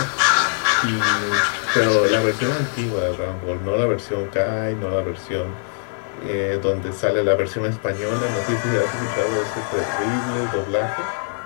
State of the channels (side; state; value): right; silent; 64 dB below the other